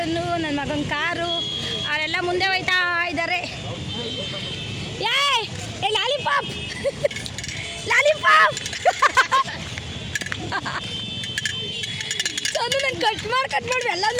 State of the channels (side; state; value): both; identical; correlation 1.00